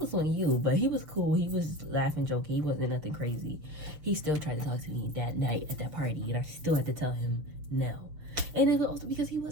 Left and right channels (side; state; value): left; late; 6.7 ms